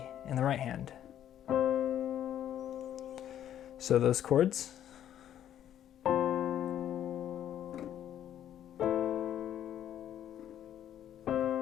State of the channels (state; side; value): quieter; right; 10.8 dB